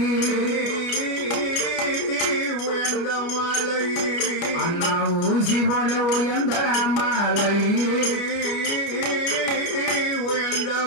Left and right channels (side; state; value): right; late; 29 ms